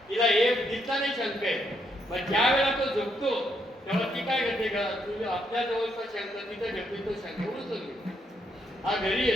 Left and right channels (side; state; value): both; normal; correlation 0.75